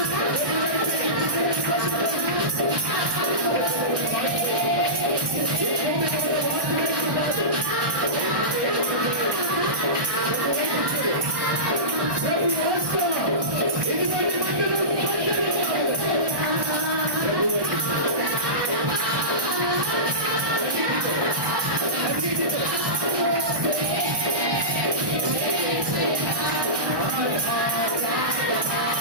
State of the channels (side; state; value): left; late; 1.2 ms